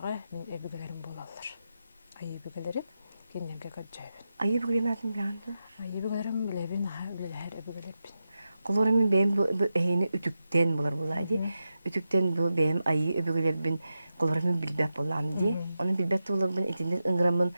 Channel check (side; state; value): both; inverted; correlation -0.90